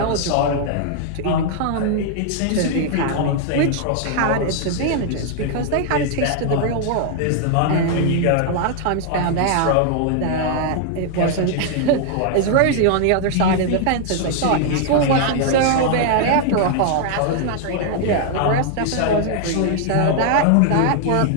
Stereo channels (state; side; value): different; both; correlation -0.01